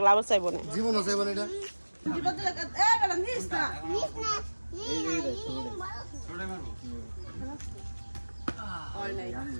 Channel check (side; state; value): both; inverted; correlation -1.00